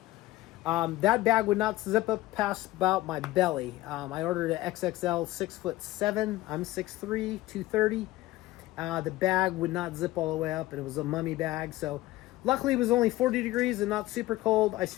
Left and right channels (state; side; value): quieter; right; 17.6 dB